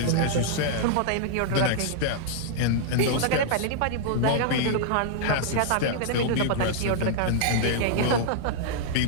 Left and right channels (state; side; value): different; both; correlation -0.01